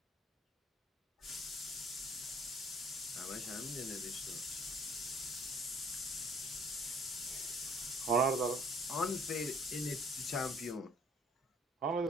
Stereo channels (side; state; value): both; normal; correlation 0.58